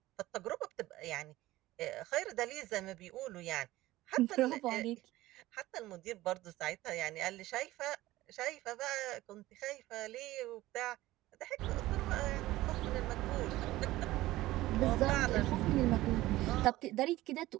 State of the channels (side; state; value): left; quieter; 17.0 dB